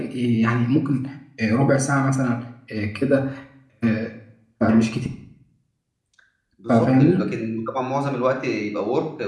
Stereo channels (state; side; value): identical; both; correlation 1.00